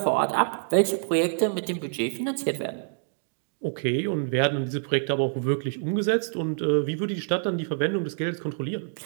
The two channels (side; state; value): left; silent; digital silence